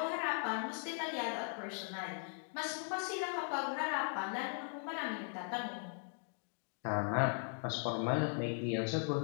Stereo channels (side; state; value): right; silent; 52 dB below the other